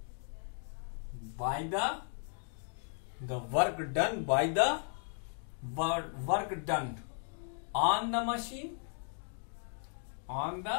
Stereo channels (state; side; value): silent; right; 54 dB below the other